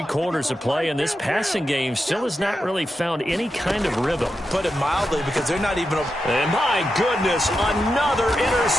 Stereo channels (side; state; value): both; normal; correlation 0.88